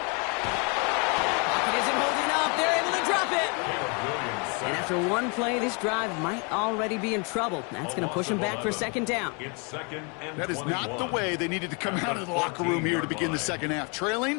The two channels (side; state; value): right; quieter; 33.9 dB